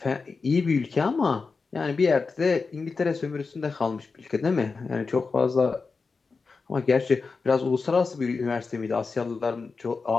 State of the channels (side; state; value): right; quieter; 4.5 dB